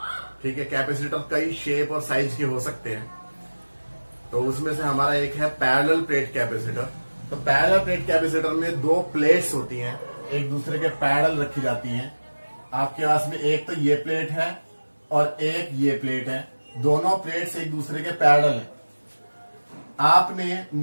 ठीक है, कैपेसिटर कई शेप और साइज के हो सकते हैं, तो उसमें से हमारा एक है पैरेलल प्लेट कैपेसिटर। तो पैरेलल प्लेट कैपेसिटर में दो प्लेट्स होती हैं, एक दूसरे के पैरेलल रखी जाती हैं। आपके पास में एक तो ये प्लेट है और एक ये प्लेट है, दोनों प्लेट्स एक दूसरे के पैरेलल हैं। आपने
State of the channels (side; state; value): both; inverted; correlation -1.00